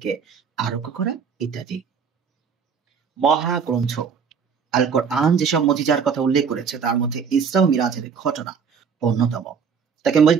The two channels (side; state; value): left; quieter; 6.4 dB